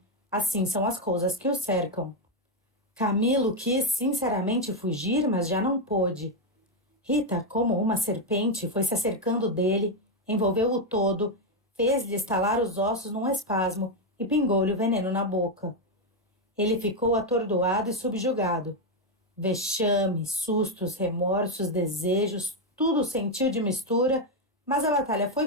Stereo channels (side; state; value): both; normal; correlation 0.04